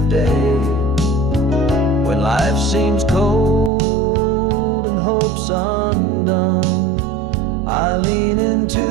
day. When life seems cold and hope's undone, I lean into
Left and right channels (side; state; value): left; drops out; at 3.7 s